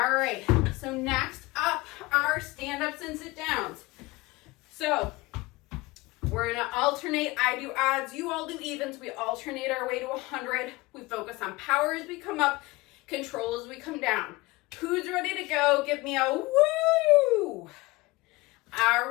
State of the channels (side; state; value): right; quieter; 22.0 dB